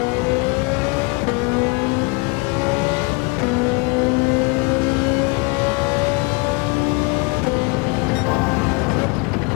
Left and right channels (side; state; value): right; quieter; 29.4 dB